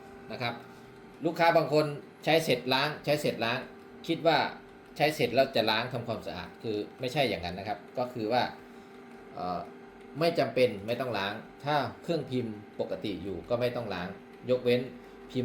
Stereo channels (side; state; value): both; identical; correlation 1.00